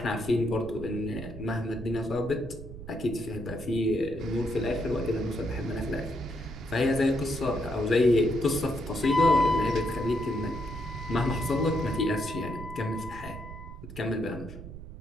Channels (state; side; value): noise; right; rumble, 12 dB below the sound